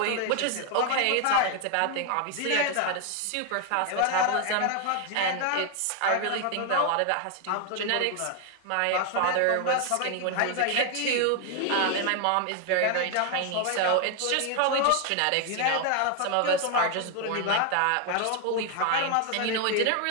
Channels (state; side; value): different; both; correlation 0.01